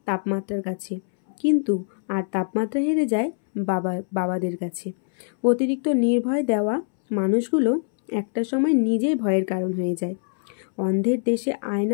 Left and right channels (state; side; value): silent; right; 63 dB below the other